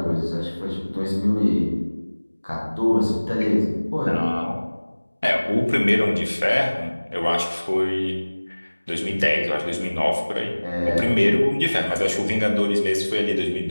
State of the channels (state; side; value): inverted; both; correlation -1.00